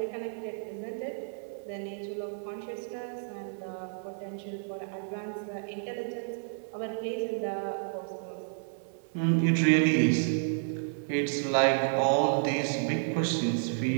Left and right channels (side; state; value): left; silent; 57 dB below the other